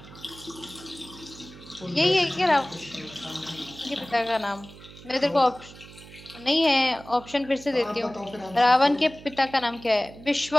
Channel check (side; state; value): right; noise; hum, 18 dB below the sound